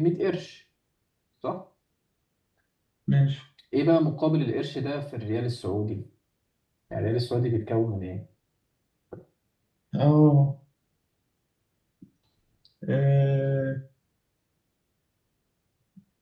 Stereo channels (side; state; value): both; identical; correlation 1.00